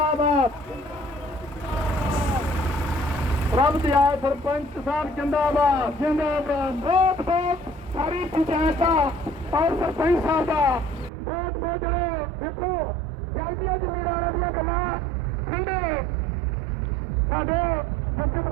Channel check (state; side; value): drops out; left; at 11.1 s